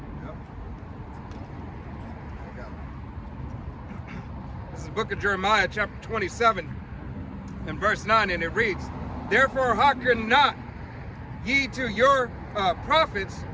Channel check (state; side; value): identical; both; correlation 1.00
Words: Yep. I got it. This is the book of Jeremiah, chapter 27, and verse 9, and it reads, "Therefore hearken not ye to your prophets,